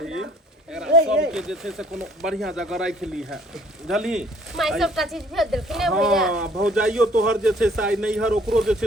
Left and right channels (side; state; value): both; normal; correlation 0.57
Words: एकरा सब के जे छै से कोनो बढ़िया जगह राख ली है, बुझली? माई सबटा चीज भेज देलखिन ने भैया। हां भौजाइयो तोहर जे छै से आई नैहर ओकरो जे